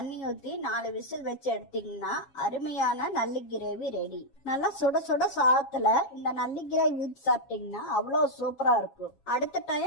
ஊத்தி 4 விசில் வச்சு எடுத்தீங்கன்னா அருமையான நல்லி கிரேவி ரெடி. நல்லா சுட சுட சாதத்துல இந்த நல்லி கிரேவி ஊத்தி சாப்பிட்டீங்கன்னா அவ்வளவு சூப்பரா இருக்கும். அடுத்த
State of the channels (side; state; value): right; late; 7.3 ms